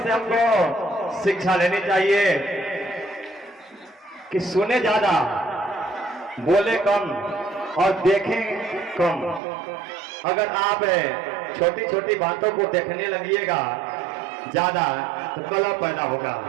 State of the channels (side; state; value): left; drops out; at 9.4 s